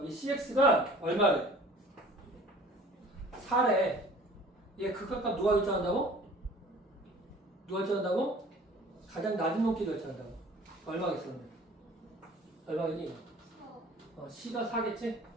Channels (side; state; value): both; normal; correlation 0.48